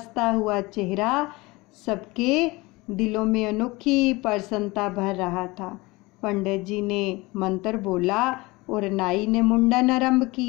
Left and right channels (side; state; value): right; quieter; 22.7 dB